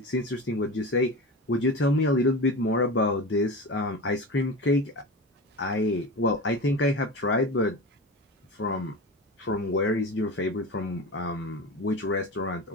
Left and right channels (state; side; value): normal; both; correlation 0.28